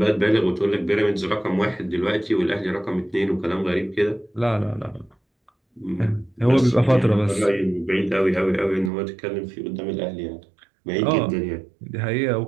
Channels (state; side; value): drops out; left; at 8.9 s